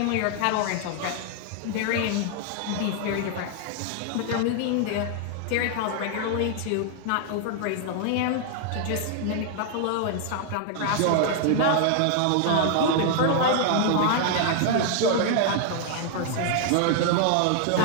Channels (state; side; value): different; both; correlation 0.00